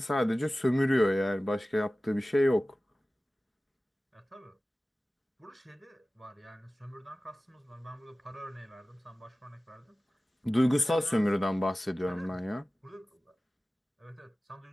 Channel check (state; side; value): normal; both; correlation 0.97